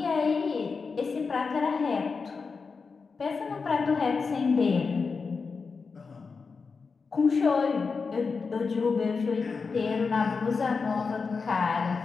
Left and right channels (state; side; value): quieter; right; 4.9 dB